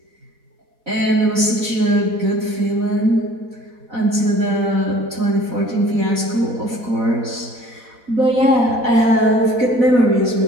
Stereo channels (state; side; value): late; left; 4.1 ms